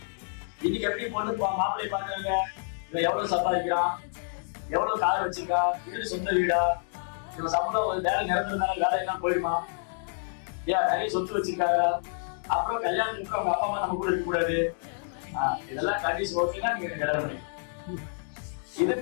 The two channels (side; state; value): right; silent; digital silence